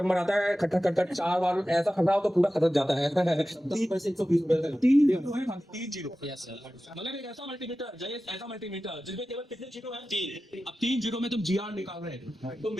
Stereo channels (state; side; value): normal; both; correlation 0.94